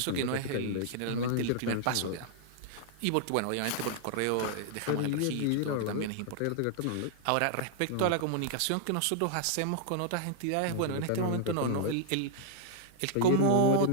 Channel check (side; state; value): both; different; correlation -0.01